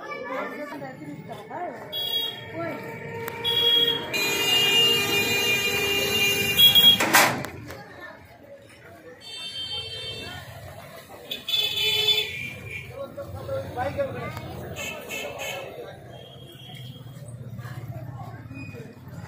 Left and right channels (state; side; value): identical; both; correlation 1.00